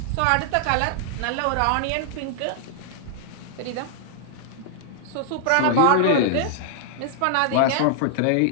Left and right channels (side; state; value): both; different; correlation -0.01